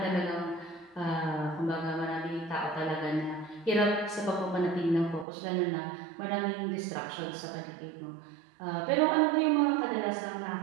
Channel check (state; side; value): drops out; left; at 5.2 s